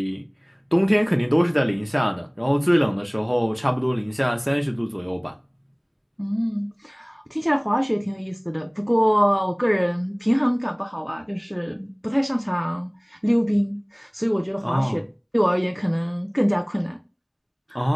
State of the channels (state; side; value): identical; both; correlation 1.00